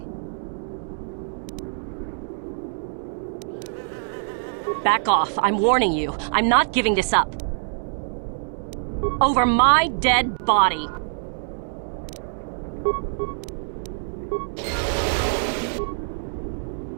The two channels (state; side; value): silent; left; digital silence